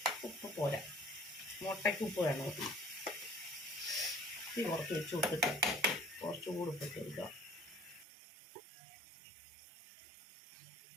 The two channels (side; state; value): left; drops out; at 8.1 s